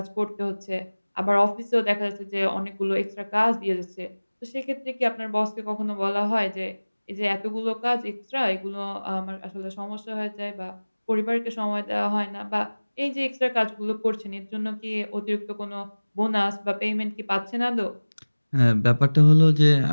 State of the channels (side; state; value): both; inverted; correlation -1.00